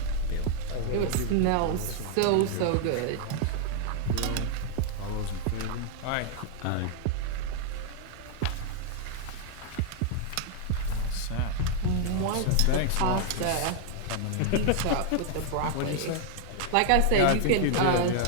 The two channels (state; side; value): different; both; correlation 0.00